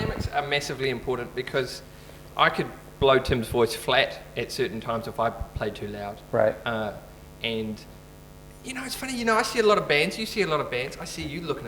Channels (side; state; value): both; identical; correlation 1.00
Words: are massively important because I could blow Tim's voice flat at certain times if I played too loud. right. And you know, it's funny. You know, I see a lot of bands. You see a lot of bands. I see you looking